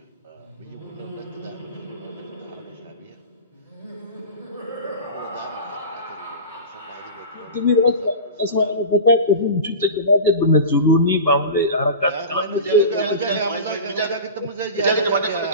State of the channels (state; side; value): inverted; both; correlation -0.31